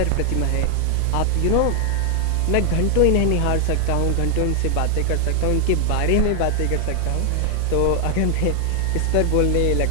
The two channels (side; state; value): both; different; correlation 0.00